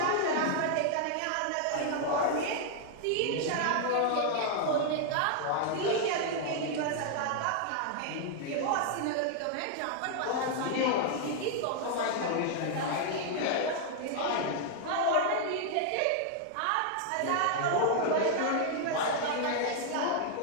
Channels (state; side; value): different; both; correlation 0.00